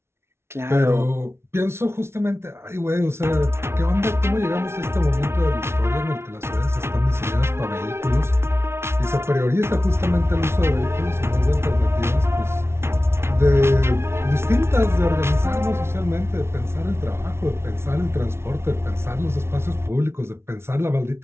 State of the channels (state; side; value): late; left; 0.12 ms